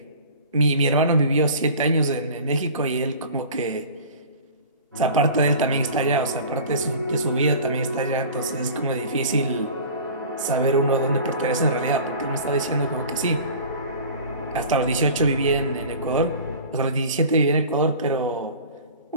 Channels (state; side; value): inverted; both; correlation -0.41